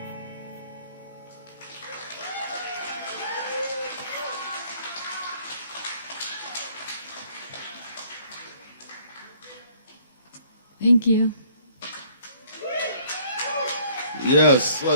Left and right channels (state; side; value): inverted; both; correlation -0.60